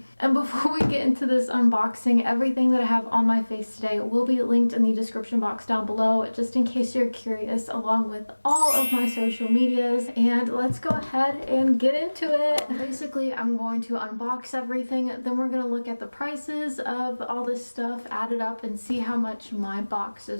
And before we get into this unboxing, everything that I have on my face today will be linked in the description box down below, just in case you're curious, along with all of my social medias. And let's go ahead and get into it. Basically, I'm going to unbox everything, then we're going to look at the prices of all this stuff added up and see how much my box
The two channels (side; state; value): both; inverted; correlation -1.00